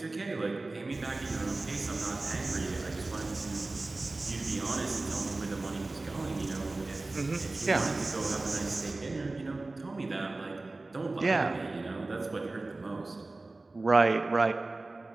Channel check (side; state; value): left; quieter; 3.2 dB